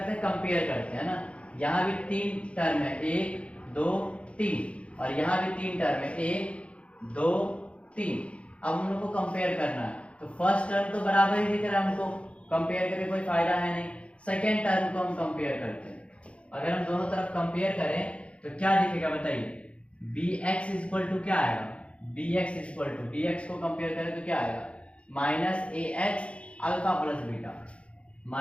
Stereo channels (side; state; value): right; late; 0.061 ms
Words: हैं, कंपेयर करते हैं ना। यहाँ भी 3 टर्म है, 1 2 3, और यहाँ भी 3 टर्म है, 1 2 3। अब हम लोग को कंपेयर करना है, तो फर्स्ट टर्म तो बराबर ही दिख रहा है हमको, कंपेयर करके कोई फायदा है नहीं। सेकेंड टर्म को हम कंपेयर करते हैं। अगर हम दोनों तरफ कंपेयर करें तो क्या दिखेगा बताइए, bx इक्वल टू क्या आएगा, bx इक्वल टू, bx को कंपेयर करें तो क्या आएगा, minus a x alpha plus beta,